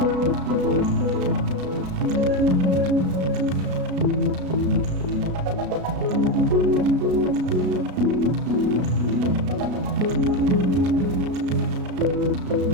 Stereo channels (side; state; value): left; late; 33 ms